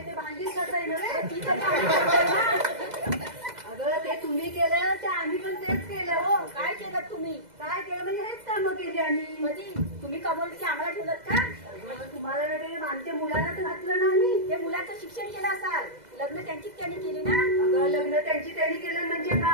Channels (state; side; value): late; left; 2.0 ms